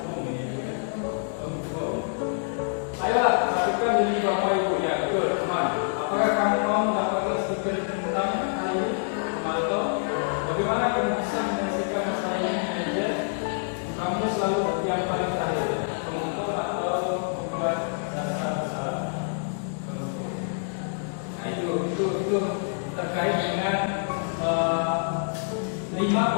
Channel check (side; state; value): right; silent; digital silence